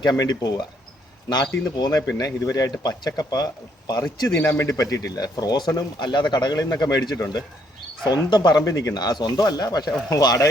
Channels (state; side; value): normal; both; correlation 0.70